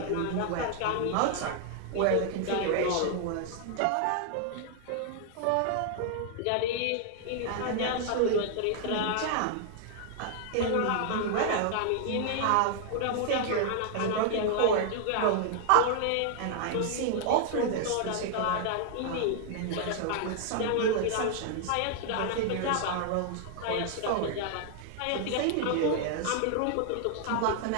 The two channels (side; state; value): both; different; correlation 0.00